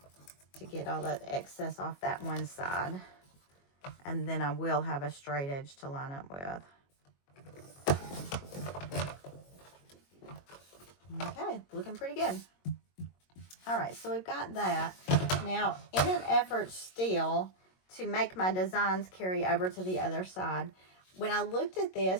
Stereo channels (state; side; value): late; right; 22 ms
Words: to get all that excess off that one side. And then I will have a straight edge to line up with. Okay, looking pretty good. All right, so we've got that. Now, in an effort still to make my designs carry over to the other side, when I looked at